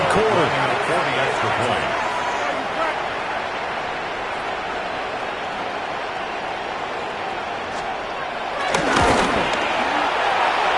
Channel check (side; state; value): both; identical; correlation 1.00